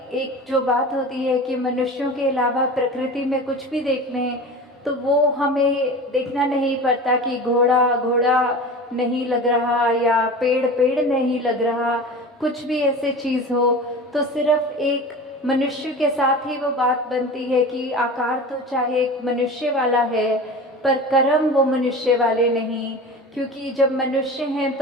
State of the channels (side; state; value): both; normal; correlation 0.34